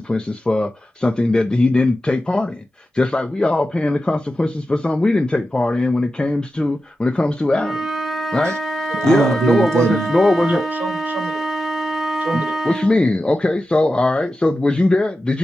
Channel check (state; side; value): normal; both; correlation 0.92